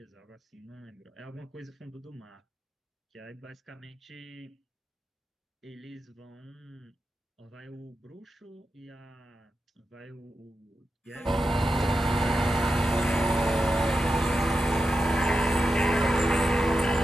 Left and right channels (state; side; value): normal; both; correlation 0.89